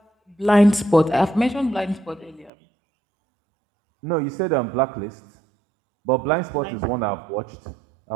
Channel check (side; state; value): left; drops out; at 2.5 s